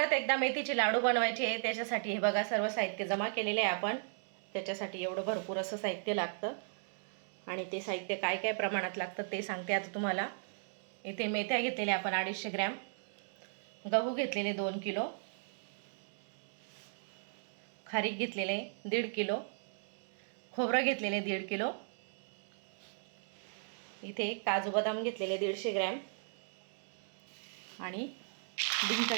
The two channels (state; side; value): silent; left; digital silence